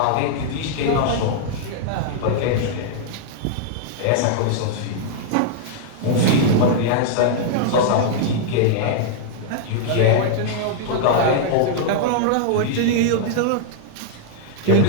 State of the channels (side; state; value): both; different; correlation -0.01